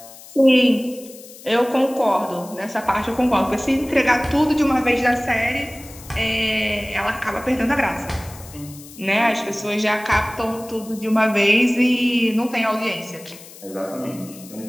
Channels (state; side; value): noise; left; hiss, 19 dB below the sound